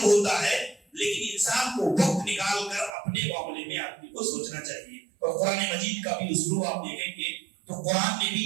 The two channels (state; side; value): drops out; left; at 2.9 s